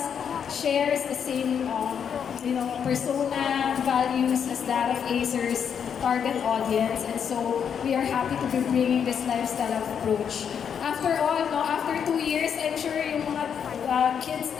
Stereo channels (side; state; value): right; quieter; 7.6 dB